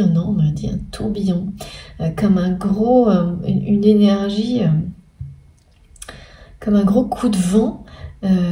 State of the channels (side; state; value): both; identical; correlation 1.00